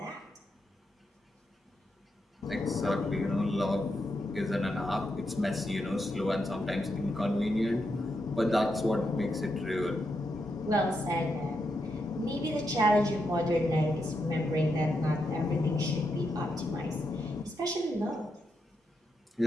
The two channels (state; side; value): normal; both; correlation 0.83